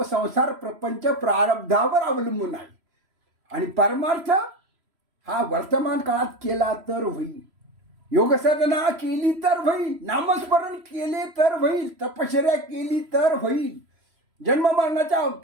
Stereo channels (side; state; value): left; late; 3.1 ms